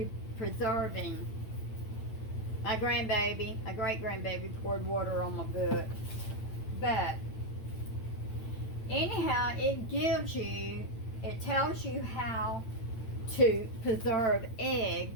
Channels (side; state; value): right; late; 8.9 ms